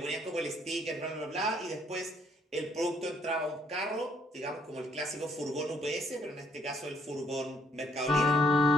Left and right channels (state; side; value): normal; both; correlation 0.67